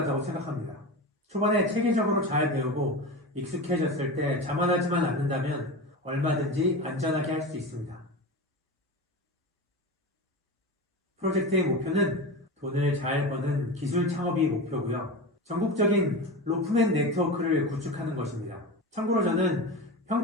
생각합니다. 초반에 체계적으로 잘 배우고 익숙해졌을 때 자만하지만 않는다면 얼마든지 안전하게 할 수 있습니다. 프로젝트의 목표는 돈을 잘 버는 기술 창업이 목표고요. 전국적인 로프맨 네트워크를 구축하는 것입니다. 참고로 저는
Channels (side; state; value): both; normal; correlation 0.26